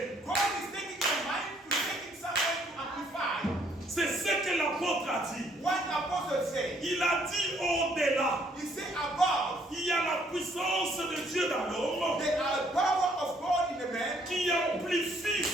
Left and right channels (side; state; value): both; normal; correlation 0.66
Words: God is taking your mind to take it somewhere to amplify. C'est ce que l'apôtre a dit. What Apostle said, Il a dit au-delà. he said above, Il y a la puissance de Dieu dans l'homme there are power of God in the man. qui amplifie